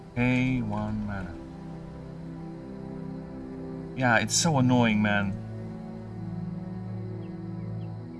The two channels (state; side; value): identical; both; correlation 1.00